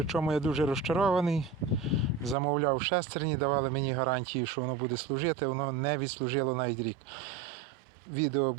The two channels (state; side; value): drops out; left; at 2.4 s